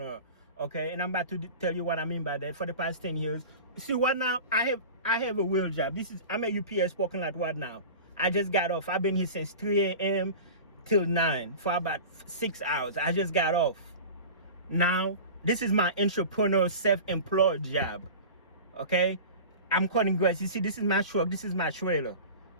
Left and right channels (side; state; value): both; inverted; correlation -0.35